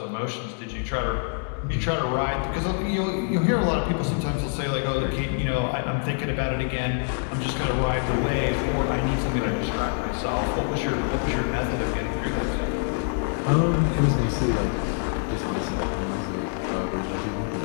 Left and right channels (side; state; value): right; silent; 61 dB below the other